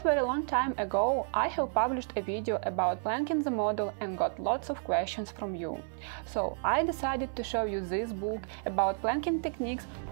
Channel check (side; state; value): left; silent; 57 dB below the other